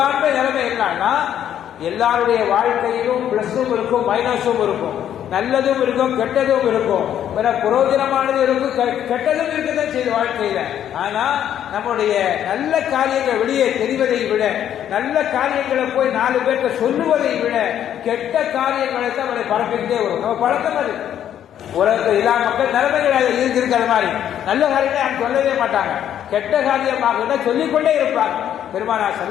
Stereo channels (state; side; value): quieter; right; 10.3 dB